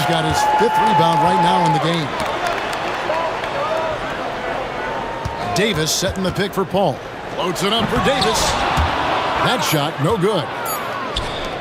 got his 5th rebound right now in the game. Davis setting the pick for Paul. Floats it up for Davis. That shot, no good.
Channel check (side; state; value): both; identical; correlation 1.00